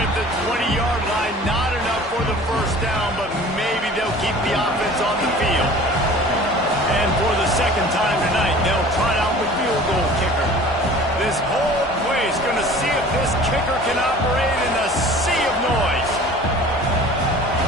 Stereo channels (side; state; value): both; normal; correlation 0.44